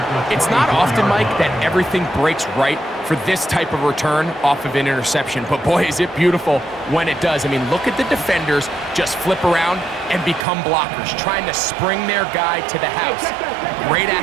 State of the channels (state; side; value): drops out; left; at 10.5 s